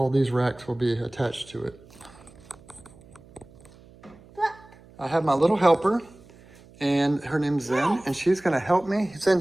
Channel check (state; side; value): noise; right; hum, 24 dB below the sound